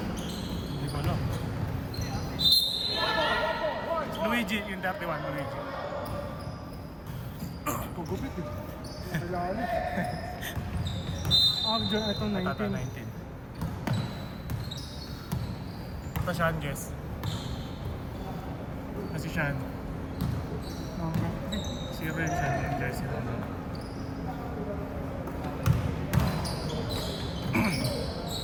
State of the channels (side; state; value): both; identical; correlation 1.00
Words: Hindi ko alam. Luigi, yung 31, Luigi. Pagupit eh. Kailangan eh. Ito 19. Tata 19. Ito Sean, guess. Kasi Sean. Zero yung Sean yung jersey mo.